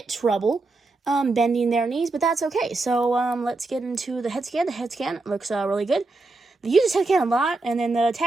trouble bending their knees, but that's okay. So let's get into the head scan. The head scan looks really good. They use his head scan a lot, and then the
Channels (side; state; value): left; quieter; 3.4 dB